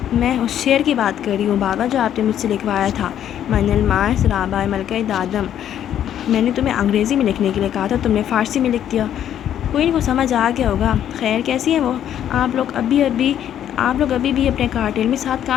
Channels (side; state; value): right; quieter; 10.4 dB